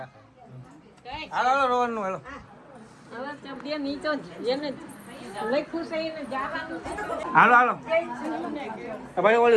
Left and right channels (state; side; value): identical; both; correlation 1.00